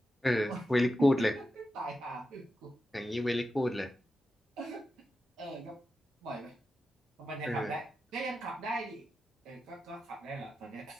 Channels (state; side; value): normal; both; correlation 0.90